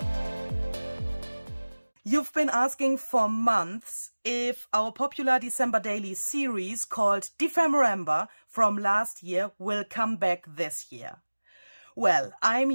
You've been asking for months if our popular December daily series called DEPHEMEREMBER from last year will come back this year. Well, I'm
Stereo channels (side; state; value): both; inverted; correlation -1.00